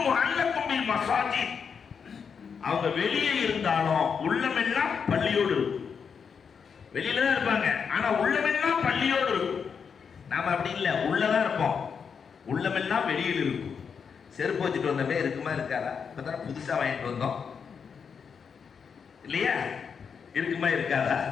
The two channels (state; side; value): quieter; right; 6.4 dB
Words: முஅல்லகும் பில் மஸாஜித். அவங்க வெளியே இருந்தாலும் உள்ளமெல்லாம் பள்ளியோடு இருக்கும். வெளியில தான் இருப்பாங்க, ஆனா உள்ளமெல்லாம் பள்ளியோடு இருக்கும். நாம அப்படி இல்லை, உள்ளதான் இருப்போம், உள்ளமெல்லாம் வெளியில் இருக்கும். செருப்பு வச்சுட்டு வந்தமே இருக்குமா இருக்காதா? இப்பதான் புதுசா வாங்கிட்டு வந்தோம் இல்லையா? இருக்குமா இருக்காதா?